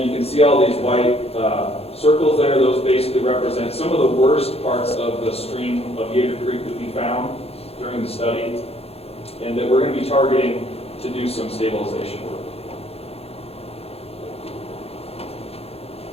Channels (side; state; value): right; late; 0.29 ms